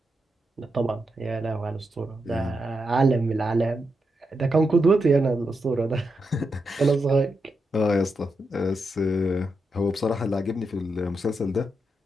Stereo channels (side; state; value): both; normal; correlation 0.85